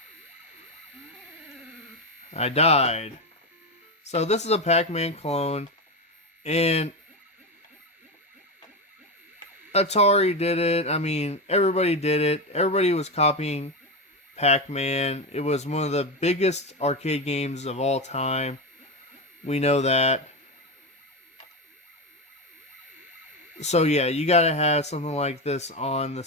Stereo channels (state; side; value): normal; both; correlation 0.15